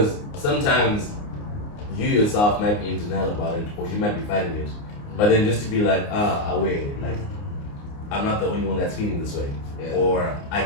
sometimes you yourself might be in denial about it, or you might be fighting it, but then just to be like, away, like I'm not the only one that's feeling this way, or I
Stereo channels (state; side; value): late; right; 29 ms